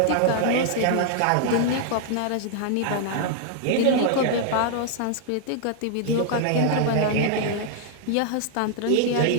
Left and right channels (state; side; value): different; both; correlation 0.00